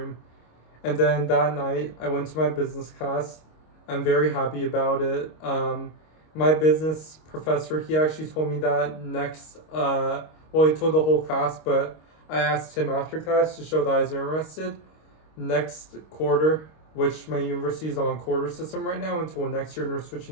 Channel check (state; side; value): late; right; 26 ms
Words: And then that night, I went to my business class. I'm very happy about it. My business professor, he actually told me that he told the whole class, but I asked him after class to show that I was interested. Next quarter, which my university is on quarter system right now until next year, and we're